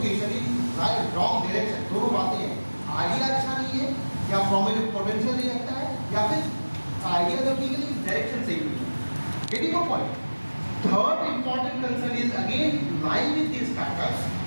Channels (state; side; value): inverted; both; correlation -1.00